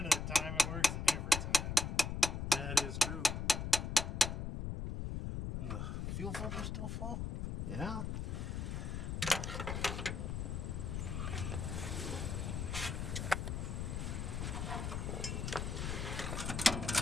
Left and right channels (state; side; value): noise; left; rumble, 2 dB below the sound